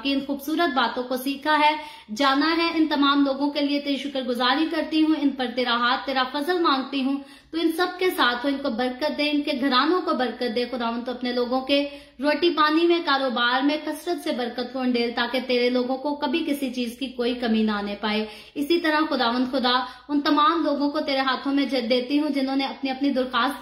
इन खूबसूरत बातों को सीखा है, जाना है, इन तमाम लोगों के लिए तेरी शुक्रगुजारी करती हूँ। इन पर तेरा हाथ, तेरा फजल मांगती हूँ। तो इन सब के साथ हो, इनको बरकत दे, इनके घरानों को बरकत दे। खुदावंद तो अपने लोगों के रोटी पानी में, कारोबार में कसरत से बरकत को अंडेल, ताकि तेरे लोगों को कभी किसी चीज की कोई कमी ना आने पाए। इसी तरह खुदावंद खुदा उन तमाम लोगों को तेरे हाथों में देती हूँ जिन्होंने अपनी अपनी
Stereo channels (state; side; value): identical; both; correlation 1.00